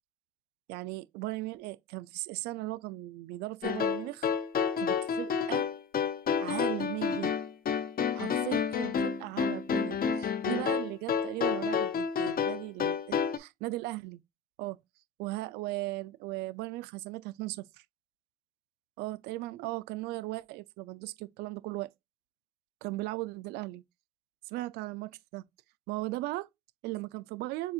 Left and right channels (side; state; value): both; normal; correlation 0.25